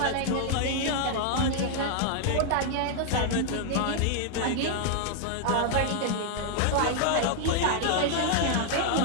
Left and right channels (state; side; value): different; both; correlation 0.00